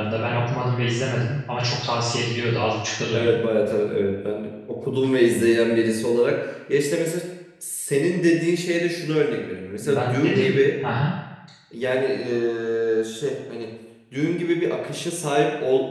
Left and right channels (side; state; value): both; identical; correlation 1.00